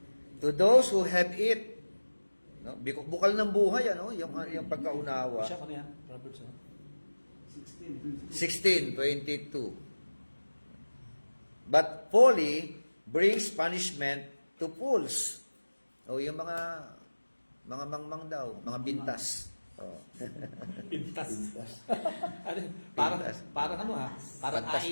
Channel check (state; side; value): inverted; both; correlation -1.00